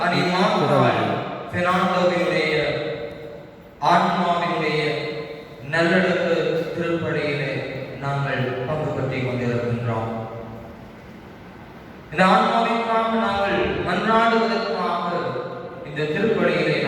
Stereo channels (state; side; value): identical; both; correlation 1.00